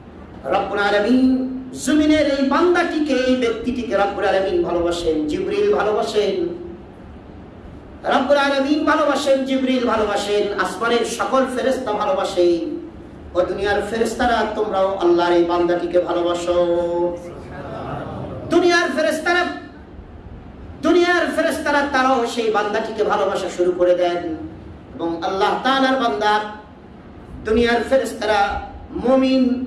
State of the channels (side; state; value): both; identical; correlation 1.00